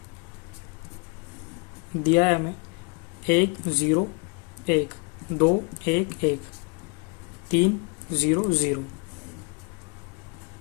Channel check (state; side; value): quieter; right; 31.8 dB